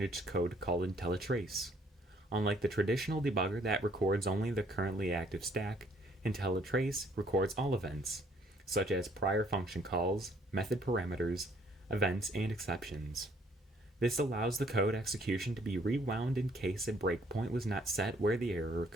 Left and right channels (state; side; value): normal; both; correlation 0.63